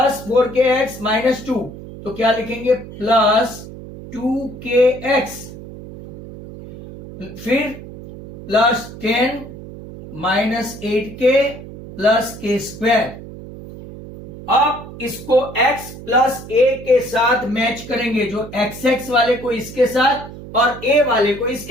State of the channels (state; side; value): noise; right; hum, 14 dB below the sound